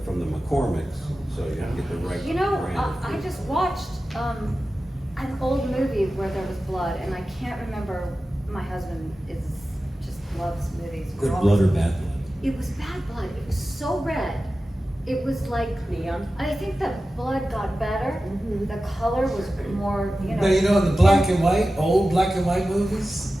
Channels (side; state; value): both; normal; correlation 0.94